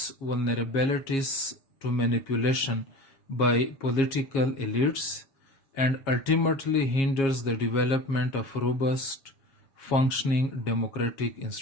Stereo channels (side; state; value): right; late; 7.3 ms